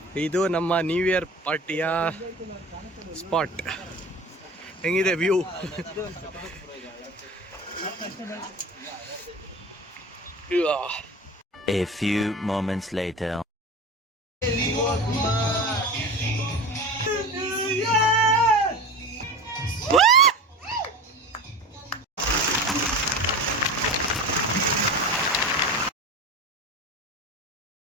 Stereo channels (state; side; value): normal; both; correlation 0.32